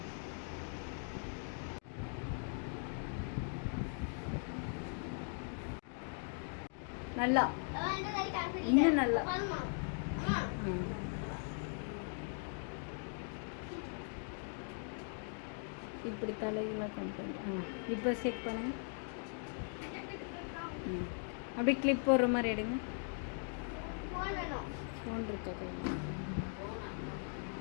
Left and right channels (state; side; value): silent; right; 51 dB below the other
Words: நல்லா இன்னும் நல்லா. இப்படி தலையெல்லாம் கொண்டு இப்போ செக் பண்ணுங்க. அப்படியே கிளிப் போடுற மாதிரி எடுங்க. ஃபோன் இருக்கா கையில்?